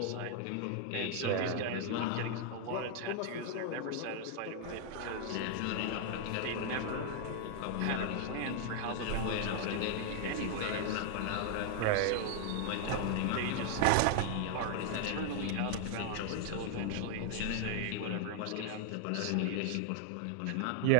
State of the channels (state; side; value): different; both; correlation 0.00